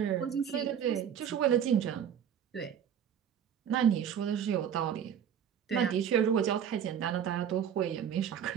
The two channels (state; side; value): quieter; left; 8.7 dB